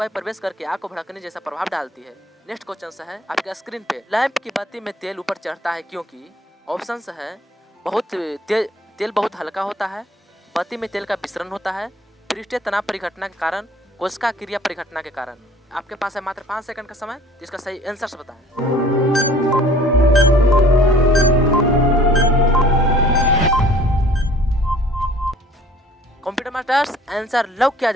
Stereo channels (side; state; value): both; normal; correlation 0.52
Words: प्रवेश करके आग को भड़कने जैसा प्रभाव डालती है। नेक्स्ट क्वेश्चन है आपके स्क्रीन पे, लैंप की बत्ती में तेल ऊपर चढ़ता है क्योंकि? ऑप्शंस है तेल बहुत हल्का होता है, बत्ती में तेल का विसरण होता है, पृष्ठीय तनाव परिघटना के कारण, कोशिका क्रिया परिघटना के कारण। आपके पास है मात्र 5 सेकंड का समय, तो इसका सही आंसर बताएं। कंप्यूटर मास्टर्स आंसर लॉक किया